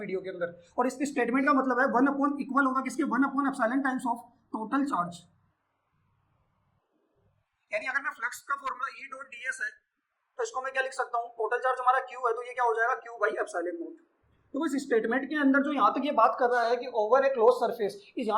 वीडियो के अंदर। और इसकी स्टेटमेंट का मतलब है 1 अपॉन इक्वल होगा किसके, 1 upon epsilon times of total charge. यानी अगर मैं फ्लक्स का फॉर्मूला E डॉट ds है तो इसको मैं क्या लिख सकता हूँ, टोटल चार्ज हमारा Q है, तो ये क्या हो जाएगा, Q बाई एप्सिलॉन नॉट। तो इस स्टेटमेंट के अंदर जो यहाँ तक ये बात कर रहा है कि ओवर ए क्लोज सरफेस, इस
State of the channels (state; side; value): identical; both; correlation 1.00